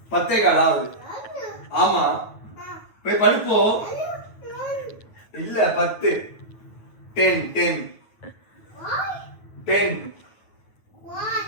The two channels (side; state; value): right; late; 9.2 ms